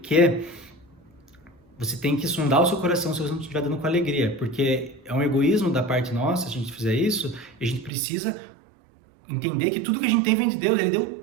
que você tem que sondar o seu coração se você não estiver dando com alegria, porque é um egoísmo da parte nossa, se a gente fizer isso, e a gente precisa entender que tudo que a gente tem vem de Deus, Ele deu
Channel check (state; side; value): drops out; left; at 7.9 s